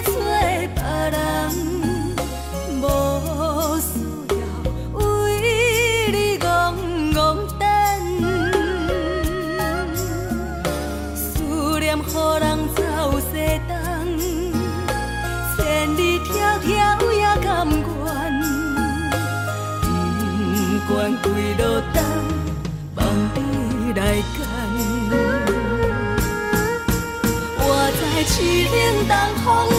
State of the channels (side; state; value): both; identical; correlation 1.00